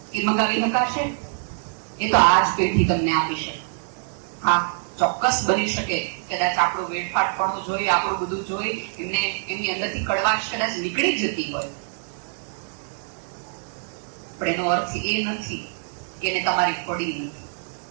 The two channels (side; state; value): left; silent; digital silence